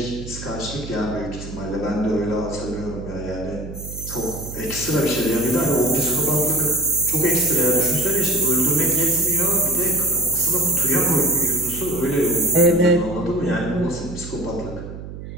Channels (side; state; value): right; noise; hum, 11 dB below the sound